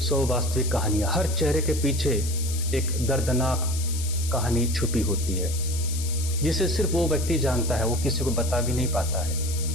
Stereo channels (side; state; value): left; noise; hiss, 9 dB below the sound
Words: वास्तविक कहानियां, हर चेहरे के पीछे एक दर्दनाक कहानी छुपी होती है, जिसे सिर्फ वो व्यक्ति जानता है, वो किसी को बता भी नहीं पाता है।